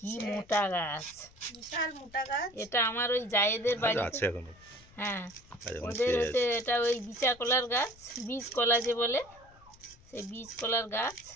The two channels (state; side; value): noise; left; rumble, 25 dB below the sound